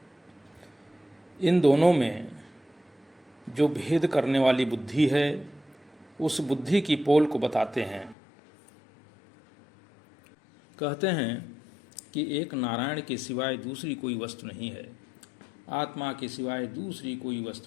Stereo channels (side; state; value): right; drops out; at 8.2 s